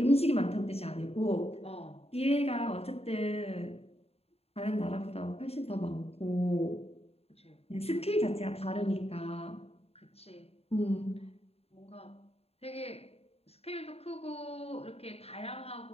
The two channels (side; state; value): right; late; 0.29 ms